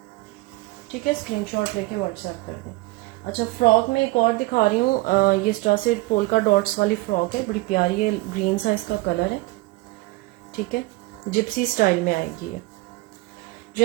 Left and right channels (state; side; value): quieter; left; 21.1 dB